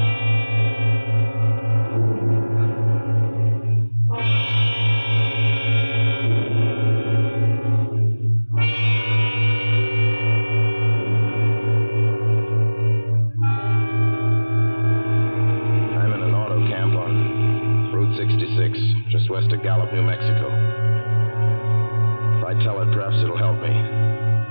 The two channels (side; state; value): both; inverted; correlation -1.00